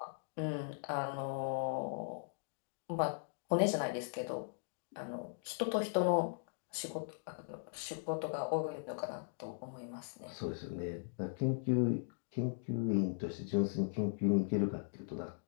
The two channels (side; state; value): right; silent; digital silence